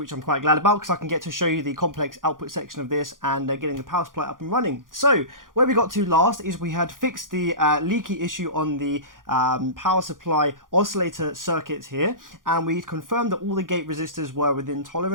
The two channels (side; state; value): left; late; 0.90 ms